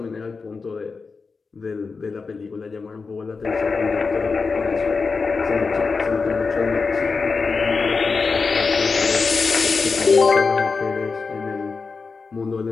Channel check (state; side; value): quieter; right; 4.6 dB